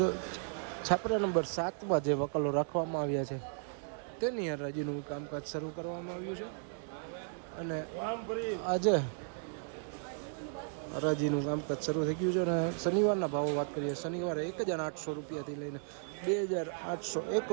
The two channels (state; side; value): silent; left; 54 dB below the other